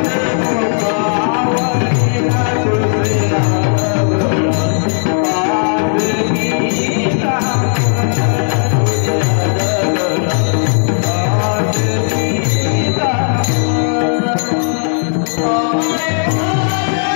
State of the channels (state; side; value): silent; right; 70 dB below the other